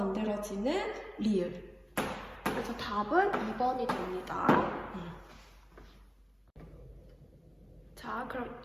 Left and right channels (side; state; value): both; identical; correlation 1.00